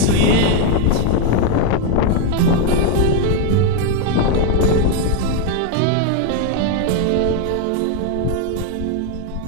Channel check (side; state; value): both; different; correlation 0.01